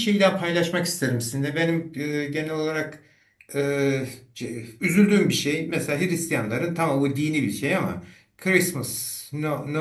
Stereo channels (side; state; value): both; identical; correlation 1.00